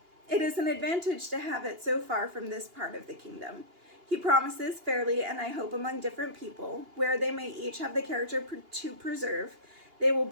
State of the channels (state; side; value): late; left; 2.8 ms